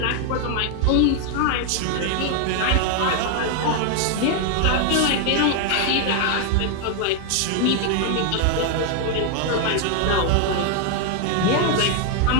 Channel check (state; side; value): different; both; correlation 0.00